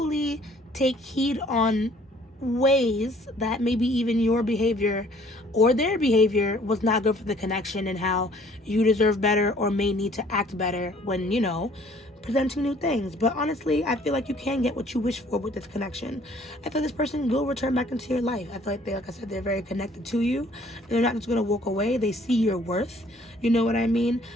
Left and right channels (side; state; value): both; normal; correlation 0.57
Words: take heed on ways that maybe even your behavior or their behavior was not good for the connection, and how you deserve better or may need to act better when, you know, presenting new things. But honestly, I feel like you can get what you wish for with this connection. I feel this person will return back into your life. I feel like like I said, they're very connected to you. They're not just going to walk away. They see your worth. You know what I mean?